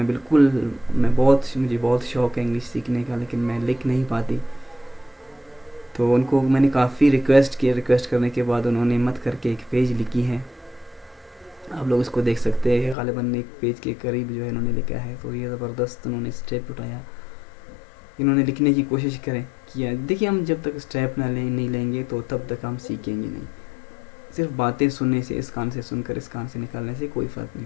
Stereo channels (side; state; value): right; drops out; at 13.0 s